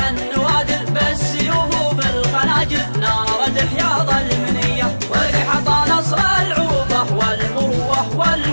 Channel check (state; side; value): inverted; both; correlation -1.00